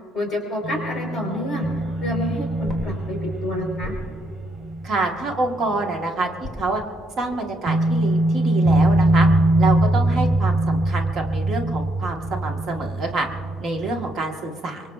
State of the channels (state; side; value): normal; both; correlation 0.75